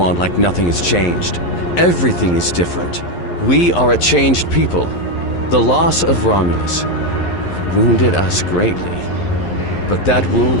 like nothing has changed. Everything is different. We are a changed people. The loss of Romulus wounded us greatly, but that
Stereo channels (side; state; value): right; late; 11 ms